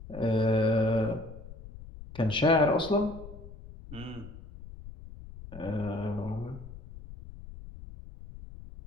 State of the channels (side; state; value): left; noise; rumble, 15 dB below the sound